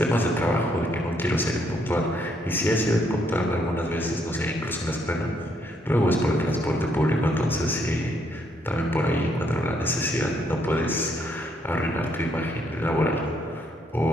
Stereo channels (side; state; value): both; normal; correlation 0.72